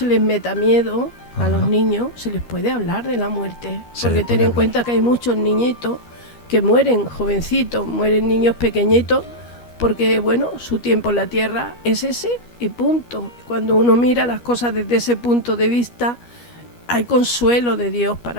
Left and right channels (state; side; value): late; right; 13 ms